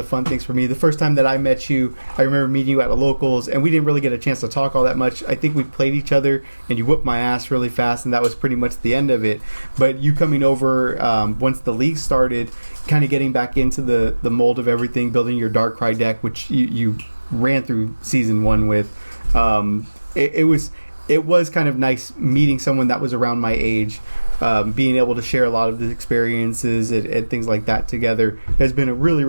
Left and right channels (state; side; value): inverted; both; correlation -1.00